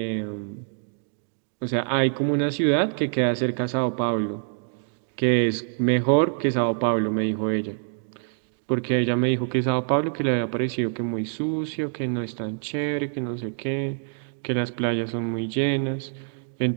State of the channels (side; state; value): left; silent; digital silence